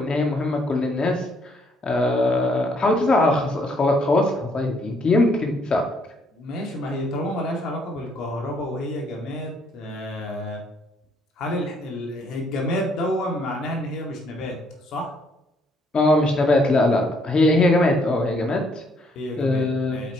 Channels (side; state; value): both; normal; correlation 0.68